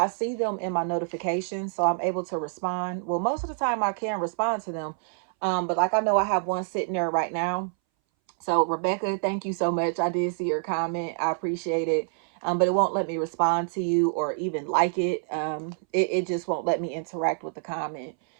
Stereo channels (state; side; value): silent; left; 60 dB below the other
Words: see them in my notifications, so I'm able to respond. Well, most of the time I can respond to them. But like, I know I have one sitting there right now. So Rebecca, thank you so much. I did see your comment. I appreciate it. But it won't let me respond to you or even like it. It just won't let me interact with the comment.